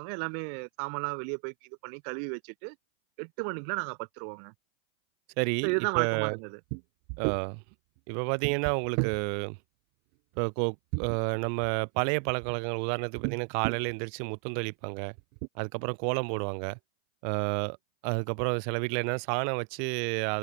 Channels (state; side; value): silent; left; 57 dB below the other